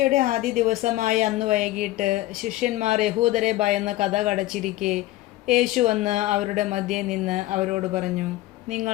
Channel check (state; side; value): quieter; right; 16.7 dB